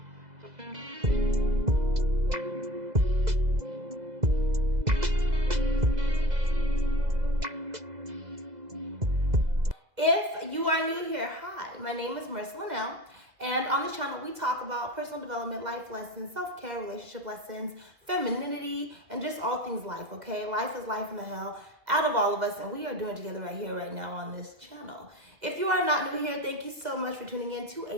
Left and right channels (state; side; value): late; left; 2.0 ms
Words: If you are new here, hi, my name is Marissa Linnell, and on this channel we talk about personal development, life lessons, self-care, relationship lessons, femininity, and just all things life, okay? Life is life in the hell out of all of us, and we are doing it together right here, right now on this channel. If you are not new here, thank you so much for tuning in to